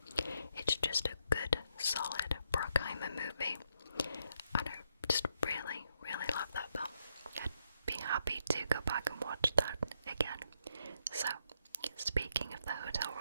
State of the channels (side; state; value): both; inverted; correlation -0.77